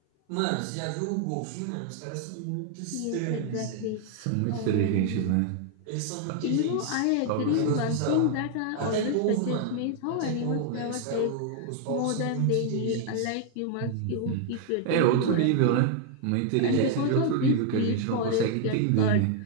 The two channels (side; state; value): both; different; correlation 0.00